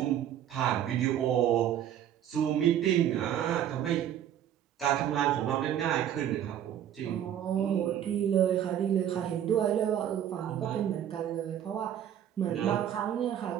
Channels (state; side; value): quieter; left; 10.4 dB